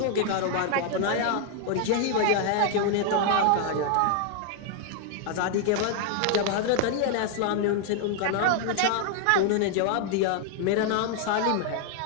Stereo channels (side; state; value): both; different; correlation 0.00